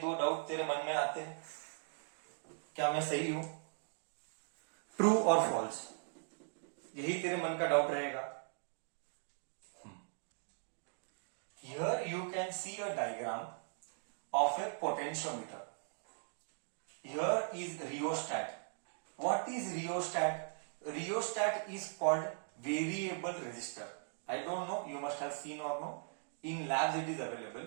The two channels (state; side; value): silent; left; digital silence